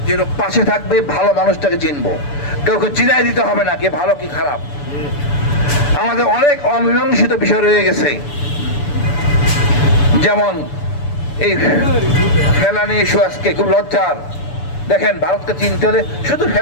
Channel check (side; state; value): right; late; 6.9 ms